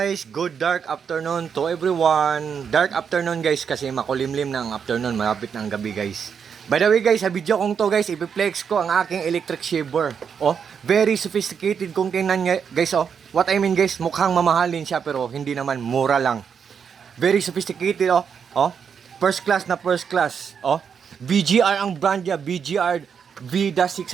Good dark afternoon to everyone. Dark afternoon guys kasi makulimlim na ang afternoon, malapit na ang gabi guys. By the way guys, sa video kong to guys, ipiplex ko ang aking electric shaver. Oh, very sophisticated kung tingnan nyo guys. Oh, what I mean guys, mukhang mamahalin siya pero hindi naman, mura lang. Very sophisticated oh. Oh, first class na first class. Oh, BGR ang brand niya, BGR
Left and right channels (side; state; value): left; quieter; 6.9 dB